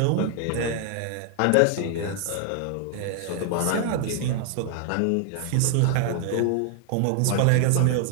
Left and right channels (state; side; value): different; both; correlation 0.00